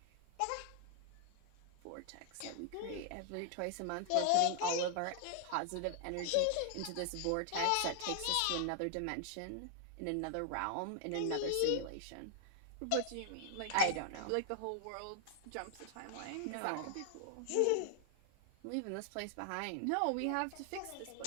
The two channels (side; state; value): both; different; correlation 0.00